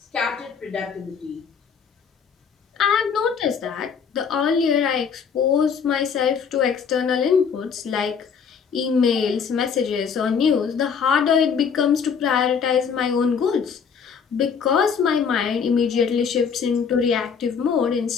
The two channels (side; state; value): right; quieter; 6.5 dB